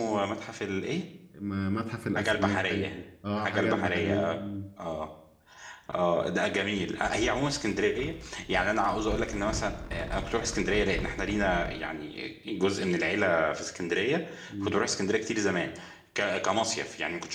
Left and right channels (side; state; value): both; identical; correlation 1.00